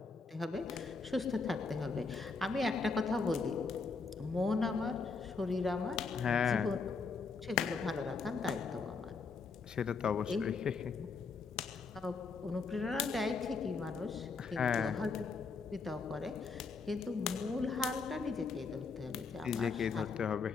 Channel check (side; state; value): right; quieter; 4.7 dB